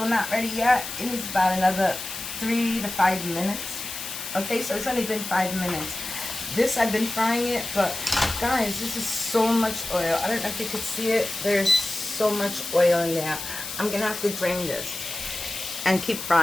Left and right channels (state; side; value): noise; left; hiss, 8 dB below the sound